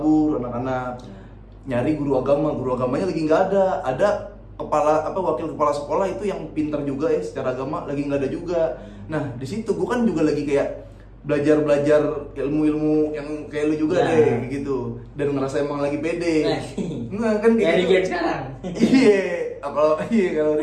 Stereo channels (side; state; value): both; identical; correlation 1.00